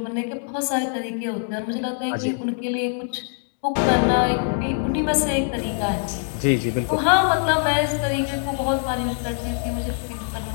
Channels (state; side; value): silent; right; 61 dB below the other